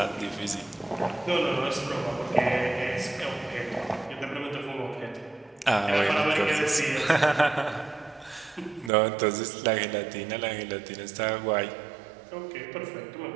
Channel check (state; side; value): drops out; left; at 8.9 s